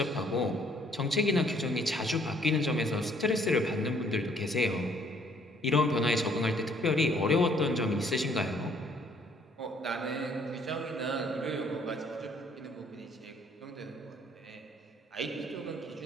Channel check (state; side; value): normal; both; correlation 0.63